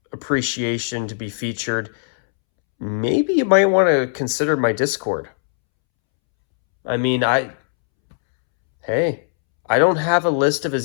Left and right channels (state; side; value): silent; right; 66 dB below the other